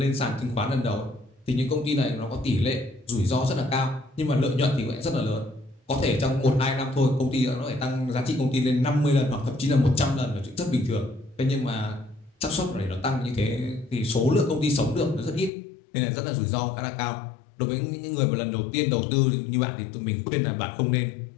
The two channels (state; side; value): drops out; right; at 15.5 s